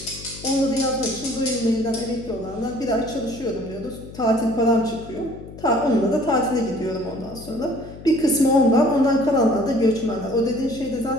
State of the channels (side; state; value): left; noise; hum, 15 dB below the sound